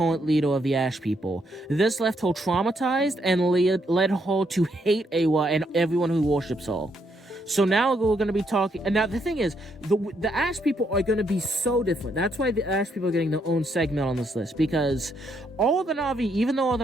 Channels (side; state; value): both; normal; correlation 0.75